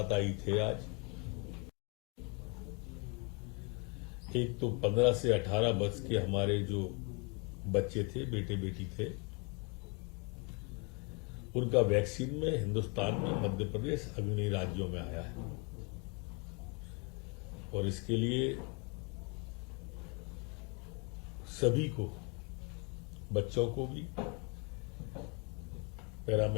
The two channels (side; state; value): right; quieter; 31.7 dB